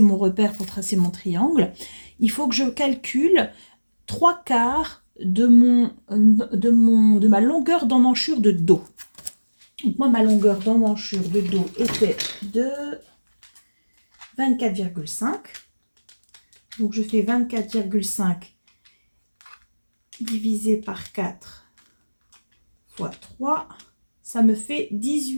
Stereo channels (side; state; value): both; inverted; correlation -1.00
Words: mon repère, pour tracer mon triangle, il faut que je calcule 3/4 de ma longueur d'emmanchure de dos. Donc, moi, ma longueur d'emmanchure de dos était de 24,5. Donc, je fais 24,5 divisé par 4 fois 3. Ça me fait